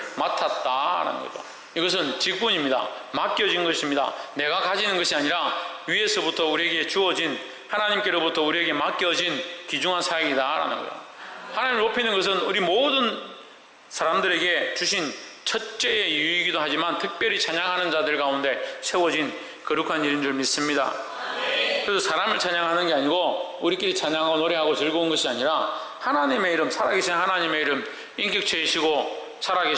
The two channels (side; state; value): both; identical; correlation 1.00